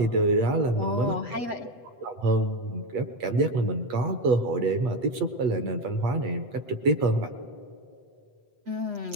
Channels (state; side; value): late; left; 8.1 ms